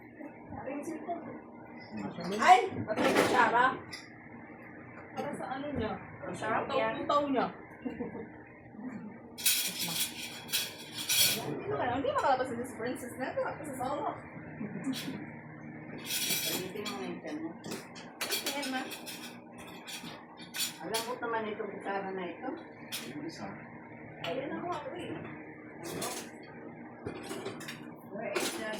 Ay! Patay ka, Shara. Para sa ano niya? Sarap yan. Taw niya. Hindi makalabas sa this princess na ito. Kasi sa solo. Palitin mo yung tiyan mo. Tingnan ma. Alam mo naman itong kutsara na ito. Ayun ako ako eh. Where is the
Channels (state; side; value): identical; both; correlation 1.00